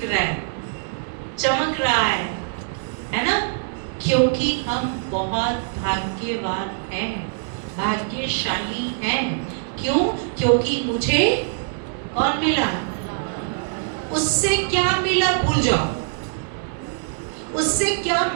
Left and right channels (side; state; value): left; silent; digital silence